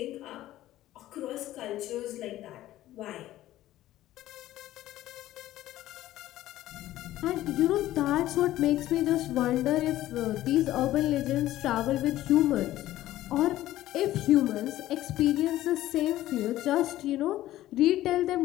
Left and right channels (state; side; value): quieter; right; 14.6 dB